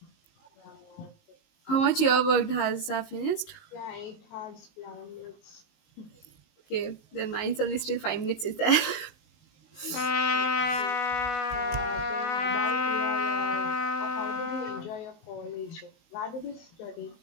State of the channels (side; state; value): right; late; 19 ms